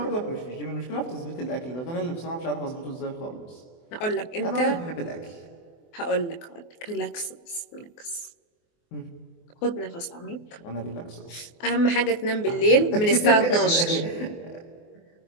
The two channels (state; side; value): late; right; 24 ms